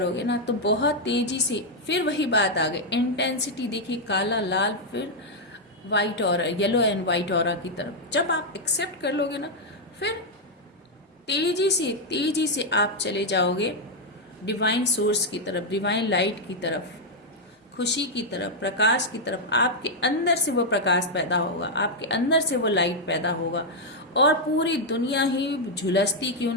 ना तो बहुत तेजी से फिर वही बात आ गई, इंटेंसिटी देखिए, काला लाल फिर वाइट और येलो एंड वाइट ऑरा की तरफ। जब आप एक्सेप्ट कर लोगे ना फिर तेजी से आप चले जाओगे डिवाइन सोर्स की तरफ, डिवाइन लाइट की तरफ, खुशी की तरफ, प्रकाश की तरफ। आपके अंदर से वो प्रकाश पैदा होगा, आपके अंदर से वो लाइट पैदा होगा, और पूरी दुनिया ही झुलसती क्यों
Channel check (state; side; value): normal; both; correlation -0.01